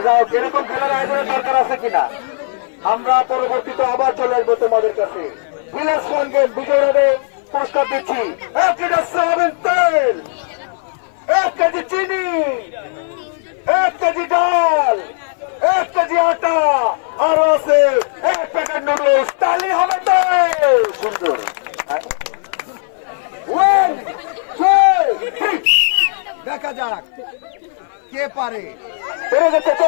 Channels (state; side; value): silent; right; 58 dB below the other